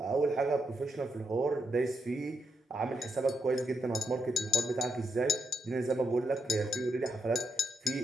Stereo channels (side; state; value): both; normal; correlation 0.81